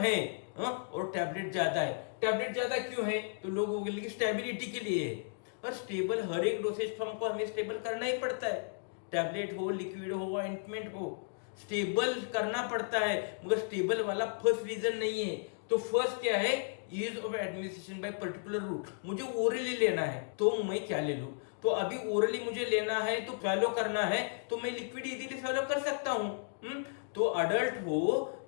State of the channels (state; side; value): silent; right; digital silence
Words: है और टैबलेट ज्यादा है। टैबलेट ज्यादा क्यों है? तो लोगों के लिए स्टेबिलिटी के लिए है। और स्टेबल हर एक डोसेज फॉर्म को हमें स्टेबल करना ही पड़ता है, टैबलेट हो, लिक्विड हो, ऑइंटमेंट हो, स्टेबल करना पड़ता है। मगर स्टेबल वाला फर्स्ट रीजन नहीं है। तो फर्स्ट क्या है? Ease of administration by particular route, मुझे ओरली लेना है तो मैं क्या ले लूं? तो अभी ओरली मुझे लेना है तो फॉलो करना है, तो मैं लिक्विड इजीली फॉलो कर सकता हूं। तो अडल्ट हो